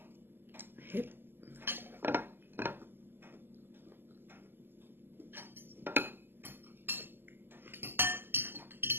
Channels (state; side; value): late; left; 0.099 ms